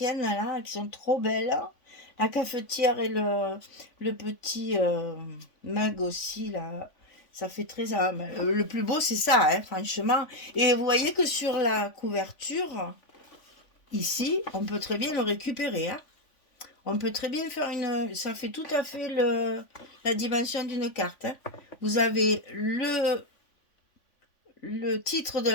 là qui sont trop belles. La cafetière et le petit mug aussi là. Ça fait très... le plus beau c'est ça, hein, franchement. Et vous voyez que sur la couverture, ici, on peut très bien le récupérer. Hein. On peut très bien faire une... Ça fait tout à fait la dimension d'une carte. Hein. Vous avez le titre de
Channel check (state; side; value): late; right; 3.5 ms